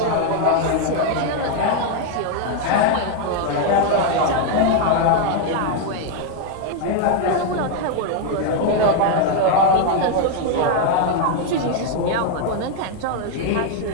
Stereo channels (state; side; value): different; both; correlation 0.01